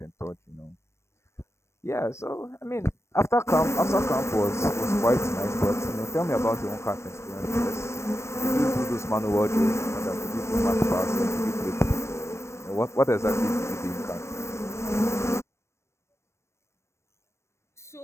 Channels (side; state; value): right; late; 0.13 ms